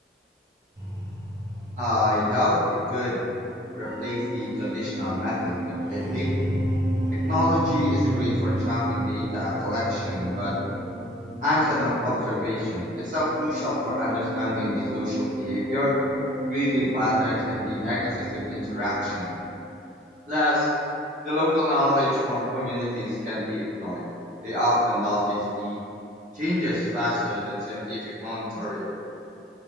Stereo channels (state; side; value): normal; both; correlation 0.46